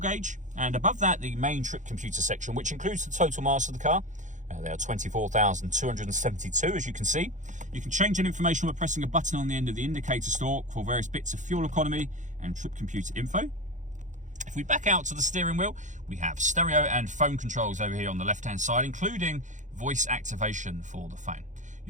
and above that, the main trip computer section, which includes the total miles of the car. They are 24,272, as you can see. You can change that information by pressing a button on the end of the indicator stalk for various bits of fuel economy and trip computer info. If we back out to the steering wheel, we have stereo and phone controls over here on the left-hand side, including voice activation for the phone.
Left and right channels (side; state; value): left; late; 0.36 ms